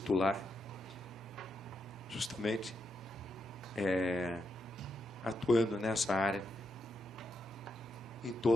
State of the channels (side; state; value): both; normal; correlation 0.83